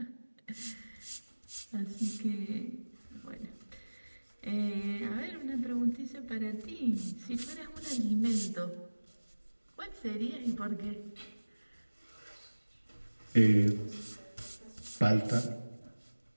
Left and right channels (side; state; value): both; inverted; correlation -1.00